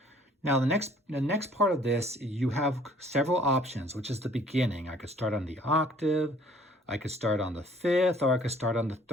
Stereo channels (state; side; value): normal; both; correlation 0.57